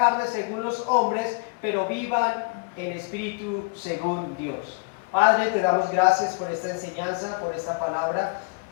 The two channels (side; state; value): right; quieter; 32.5 dB